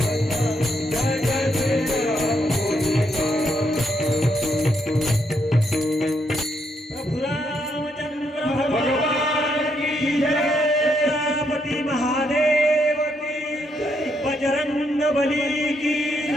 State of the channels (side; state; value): both; normal; correlation 0.77